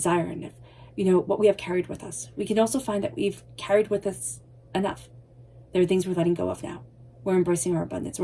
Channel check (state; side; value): identical; both; correlation 1.00